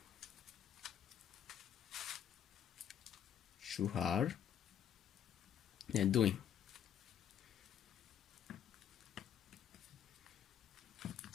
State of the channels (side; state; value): right; quieter; 9.5 dB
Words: 2R, and doing